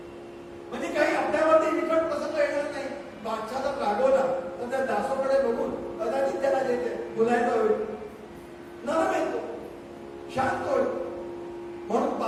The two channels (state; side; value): identical; both; correlation 1.00